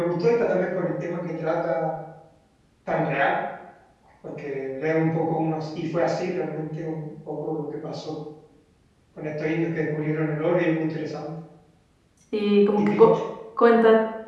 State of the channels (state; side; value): identical; both; correlation 1.00